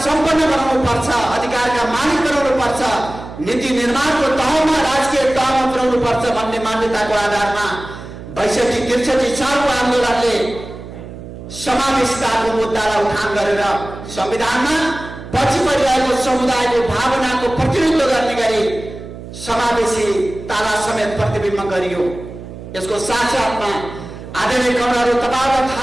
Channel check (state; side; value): noise; right; hum, 13 dB below the sound